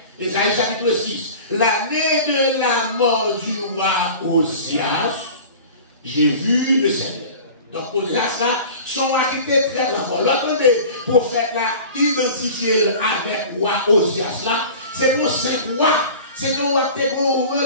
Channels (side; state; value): both; inverted; correlation -0.39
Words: Esaïe chapitre 6. L'année de la mort du roi Osias. J'ai vu le Seigneur. Donc, au-delà de ça, son activité très grand. L'autre prophète là, identifié avec roi Osias là, c'est pour 5 rois. C'est un roi qui a une